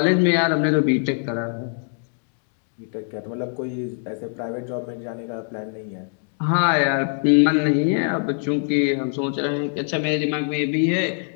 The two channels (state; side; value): silent; right; 63 dB below the other